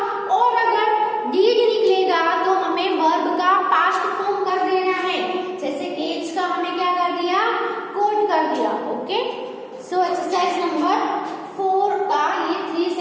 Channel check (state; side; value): identical; both; correlation 1.00